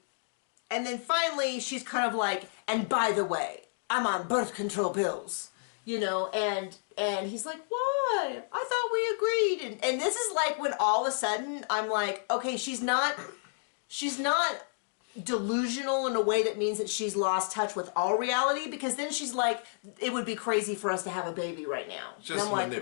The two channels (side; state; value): right; silent; digital silence